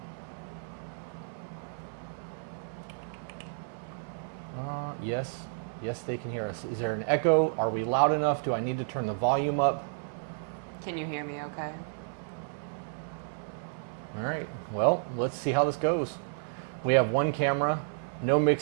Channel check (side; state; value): left; silent; 57 dB below the other